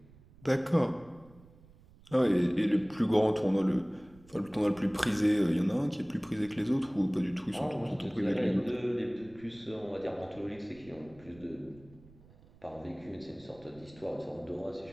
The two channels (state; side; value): noise; right; rumble, 25 dB below the sound